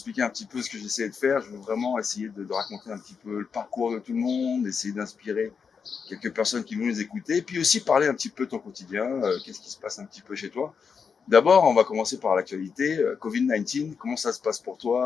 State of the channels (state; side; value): quieter; right; 6.0 dB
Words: un petit peu ce que j'essayais de faire. Je veux vraiment essayer de raconter un petit peu le parcours de tout le monde, essayer d'inspirer quelques personnes qui vont nous écouter, puis aussi parler un petit peu de ton quotidien, qu'est-ce qui se passe un petit peu chez toi. D'abord, on va commencer par l'actualité. Covid-19, comment ça se passe pour